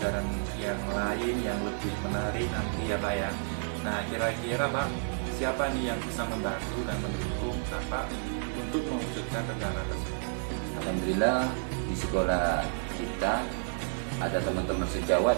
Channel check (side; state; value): left; silent; digital silence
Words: yang lain yang lebih menarik nanti ya Pak ya. Nah, kira-kira Pak, siapa nih yang bisa membantu dan mendukung Bapak untuk mewujudkan rencana tersebut? Alhamdulillah di sekolah kita ada teman-teman sejawat